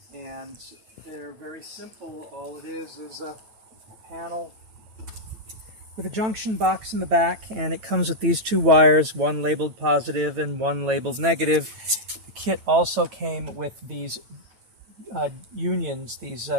And they're very simple. All it is a panel with a junction box in the back, and it comes with these two wires, one labeled positive and one labeled negative. The kit also came with these unions, these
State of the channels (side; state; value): left; late; 9.1 ms